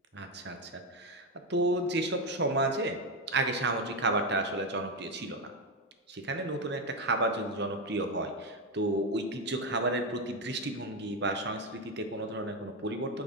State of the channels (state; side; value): normal; both; correlation 0.09